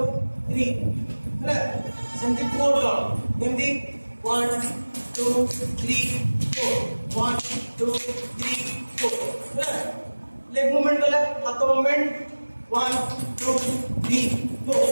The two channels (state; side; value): inverted; both; correlation -1.00